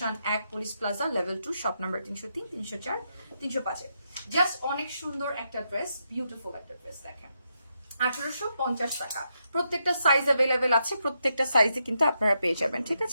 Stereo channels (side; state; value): both; inverted; correlation -0.82